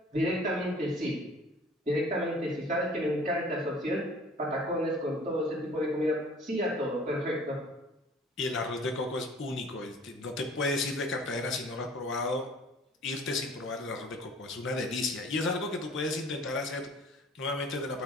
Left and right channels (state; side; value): normal; both; correlation 0.50